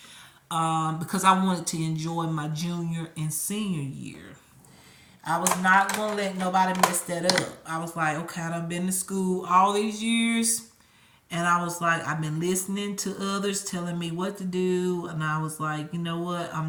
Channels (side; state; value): both; identical; correlation 1.00